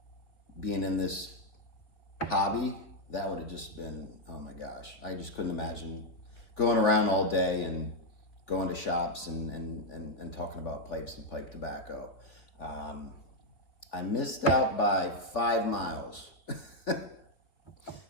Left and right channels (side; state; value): right; late; 3.5 ms